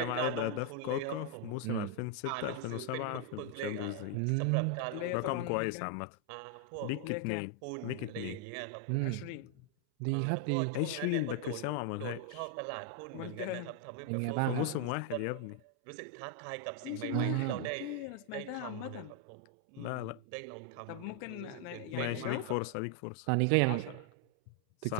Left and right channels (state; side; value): different; both; correlation 0.00